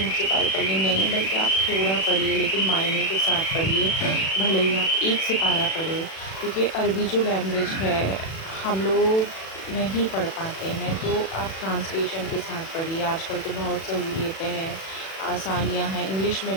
سپارے پڑھ لیے، نہیں، بلکہ آپ تھوڑا پڑھیے لیکن معنی کے ساتھ پڑھیے۔ بھلے ہی آپ 1 سپارہ پڑھیں، کیونکہ عربی جو لینگویج ہے ہم لوگ نہیں پڑھ پاتے ہیں، تو آپ ٹرانسلیشن کے ساتھ پڑھیے۔ آج کل تو بہت سہولیتیں ہیں، آسانیاں ہیں، انگلش میں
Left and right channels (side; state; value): right; late; 37 ms